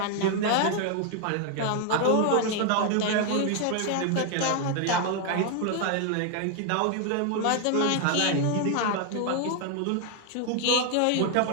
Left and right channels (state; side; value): different; both; correlation 0.00